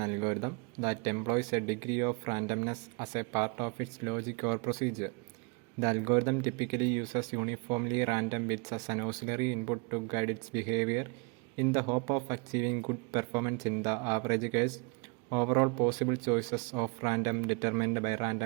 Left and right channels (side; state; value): left; quieter; 32.1 dB